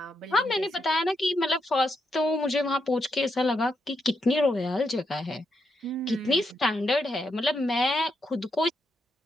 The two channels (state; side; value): normal; both; correlation 0.82